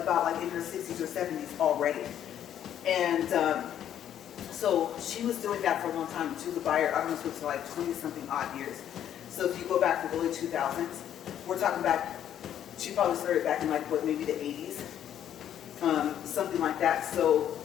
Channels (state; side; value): quieter; right; 10.3 dB